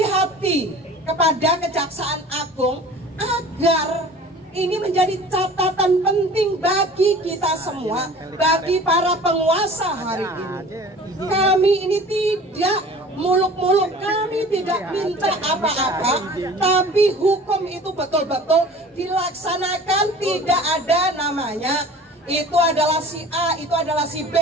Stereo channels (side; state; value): both; normal; correlation 0.44